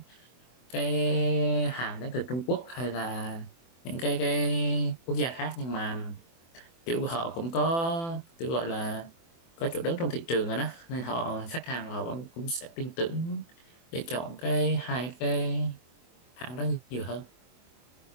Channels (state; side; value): late; right; 24 ms